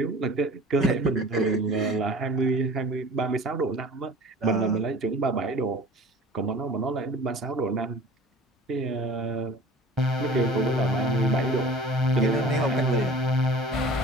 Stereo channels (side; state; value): both; normal; correlation 0.43